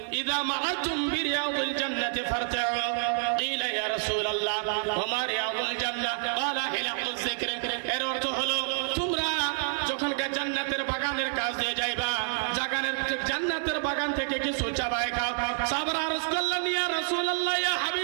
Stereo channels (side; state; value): left; silent; 59 dB below the other